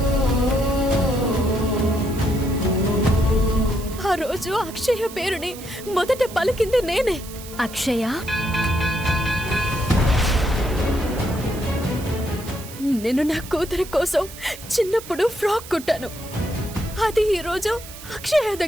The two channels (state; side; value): noise; right; hiss, 15 dB below the sound